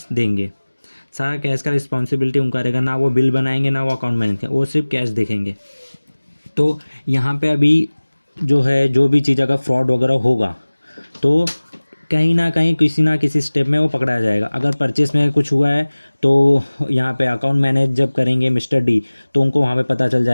देंगे। सारा कैश का रिस्पॉन्सिबिलिटी उनका रहेगा, ना वो बिल बनाएंगे ना वो अकाउंट मैनेज करेंगे, वो सिर्फ कैश देखेंगे। तो यहाँ पे अभी जो है, जो भी चीज़ अगर फ्रॉड वगैरह होगा तो कहीं ना कहीं किसी ना किसी स्टेप में वो पकड़ा जाएगा। अगर परचेस में कुछ हुआ है तो यहाँ पे अकाउंट मैनेज जब करेंगे मिस्टर डी तो उनको वहाँ पे पता चल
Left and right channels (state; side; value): inverted; both; correlation -1.00